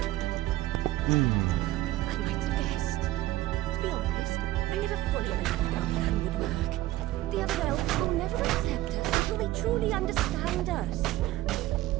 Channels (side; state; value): left; quieter; 16.5 dB